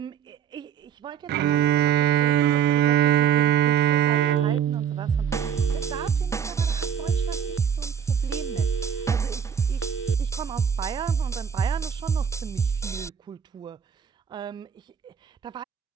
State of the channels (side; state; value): left; quieter; 8.3 dB